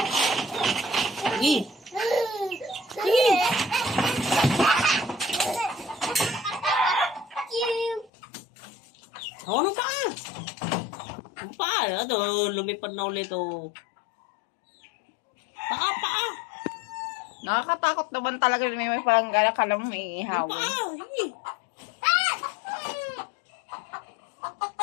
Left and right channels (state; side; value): drops out; right; at 8.1 s